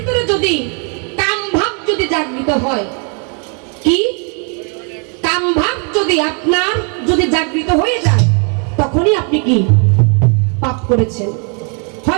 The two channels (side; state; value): left; quieter; 38.2 dB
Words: যদি কাম ভাব যদি জাগৃত হয়, কি কাম ভাব যদি আপনার যদি জাগৃত হয়ে যায়, তখনই আপনি কি পাপ করেছেন।